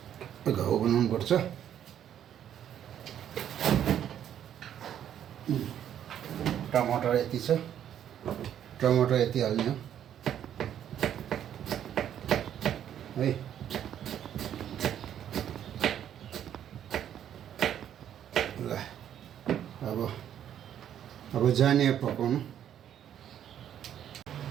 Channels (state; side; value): quieter; left; 10.1 dB